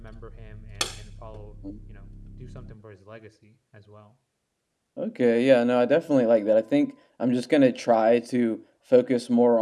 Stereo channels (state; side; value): identical; both; correlation 1.00